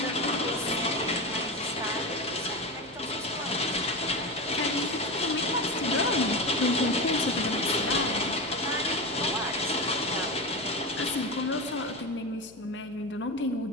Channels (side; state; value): left; noise; hum, 25 dB below the sound